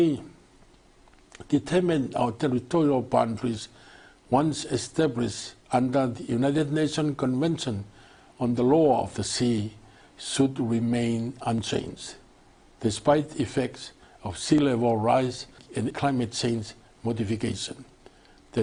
determine our territorial boundaries once established under the United Nations Convention on the Law of the Sea should remain unchanged, despite effects of sea level rise and climate change modification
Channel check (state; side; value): identical; both; correlation 1.00